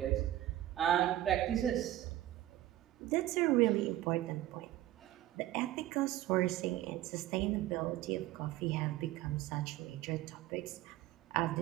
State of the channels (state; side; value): quieter; left; 14.4 dB